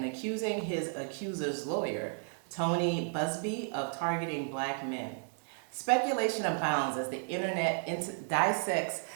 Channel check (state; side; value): silent; left; 56 dB below the other